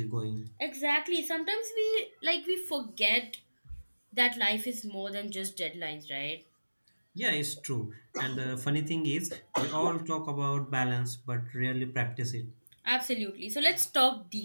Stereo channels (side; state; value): both; inverted; correlation -1.00